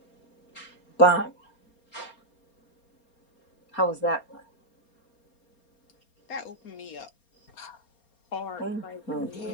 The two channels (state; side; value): late; right; 4.3 ms